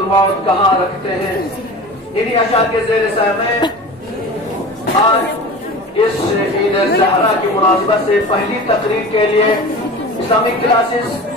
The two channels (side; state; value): both; normal; correlation 0.35